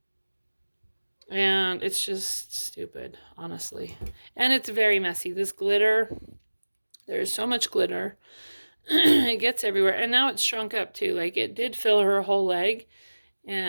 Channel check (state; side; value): inverted; both; correlation -1.00